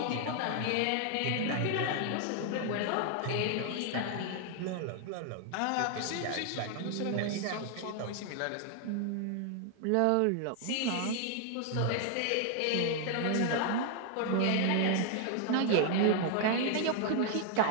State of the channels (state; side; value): different; both; correlation 0.00